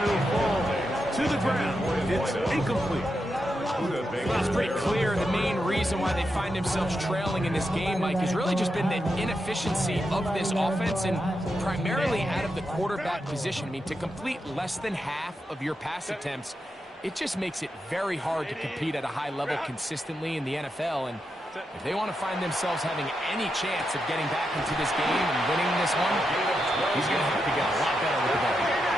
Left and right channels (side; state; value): both; normal; correlation 0.86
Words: it'll fall to the ground. It's incomplete. Well, it's pretty clear the main reason why they find themselves trailing in this game, Mike, has really just been the inefficiency of this offense and primarily out of the quarterback position. I mean, to complete less than half of your pass attempts, it just makes it very hard to compete at a high level consistently in the NFL. And if they want to find themselves having any chance of getting back into this game and winning this one, he's going to have to get a lot better with the ball.